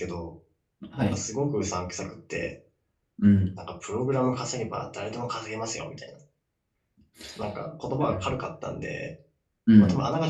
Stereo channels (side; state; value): both; identical; correlation 1.00